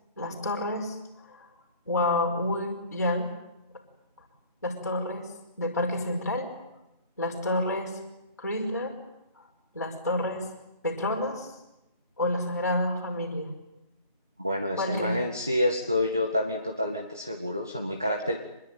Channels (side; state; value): both; inverted; correlation -0.53